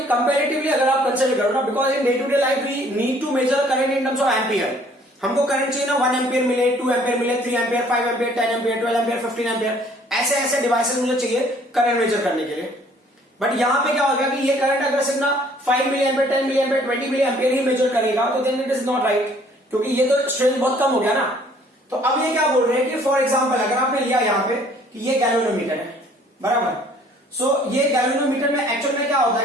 कंपैरेटिवली अगर आप कंसीडर करो ना, because in day to day life we need to measure current in terms of ampere. हमको करंट चाहिए ना 1 एम्पियर मिले, 2 एम्पियर मिले, 3 ampere, 5 ampere, 10 ampere, 12 ampere, 15 ampere, ऐसे ऐसे डिवाइसेस मुझे चाहिए करंट मेजर करने के लिए. बट यहां पे क्या हो गया कि ये करंट अगर सिर्फ ना 5 मिली एम्पियर, 10 मिली एम्पियर, 20 मिली एम्पियर ही मेजर करेगा, तो then it is not right, क्योंकि ये तो स्ट्रेंथ बहुत कम हो गया ना. तो अब ये क्या बोल रहे हैं कि फॉर एग्जाम्पल अगर आपने लिया यहाँ पे कि ये गैल्वेनोमीटर है, बराबर. सो ये गैल्वेनोमीटर में एक्चुअल में क्या होता है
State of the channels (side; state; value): both; normal; correlation 0.58